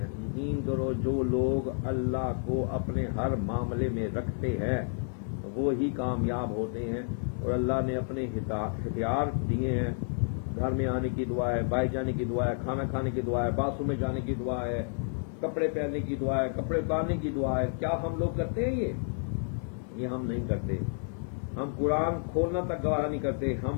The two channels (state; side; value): silent; right; 58 dB below the other